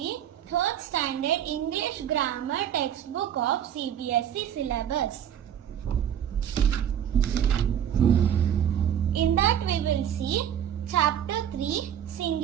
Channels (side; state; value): left; quieter; 9.7 dB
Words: 3rd standard English grammar textbook of CBSE syllabus. In that we will see chapter 3